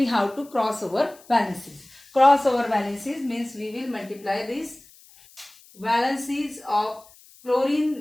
have to cross over valencies. Cross over valencies means we will multiply these valencies of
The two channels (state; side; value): noise; left; hiss, 25 dB below the sound